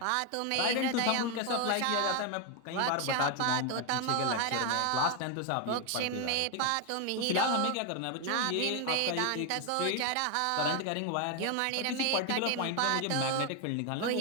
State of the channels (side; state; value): both; different; correlation 0.01